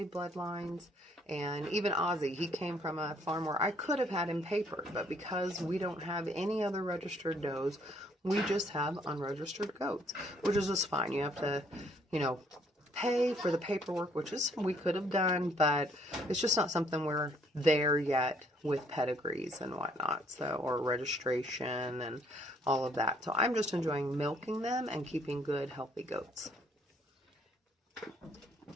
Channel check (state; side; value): normal; both; correlation 0.65